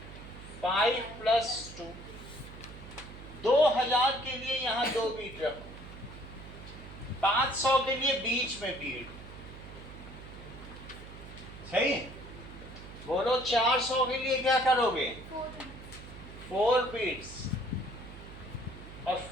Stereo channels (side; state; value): right; noise; hum, 14 dB below the sound